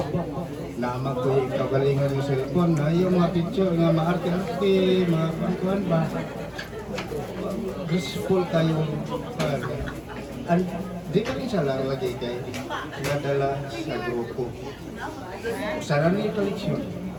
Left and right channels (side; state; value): both; identical; correlation 1.00